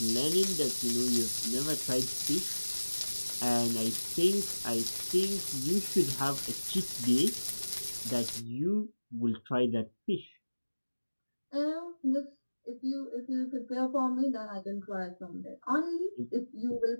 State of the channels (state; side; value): inverted; both; correlation -1.00